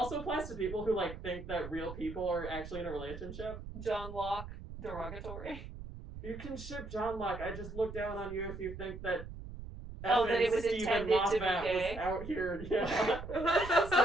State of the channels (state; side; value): noise; right; rumble, 11 dB below the sound